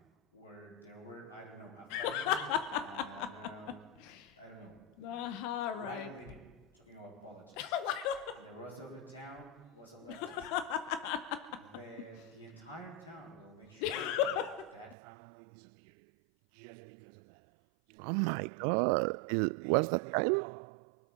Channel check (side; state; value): left; drops out; at 15.0 s